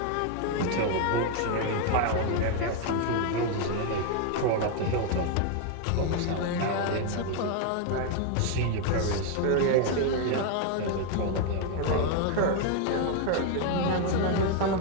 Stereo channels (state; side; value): different; both; correlation 0.01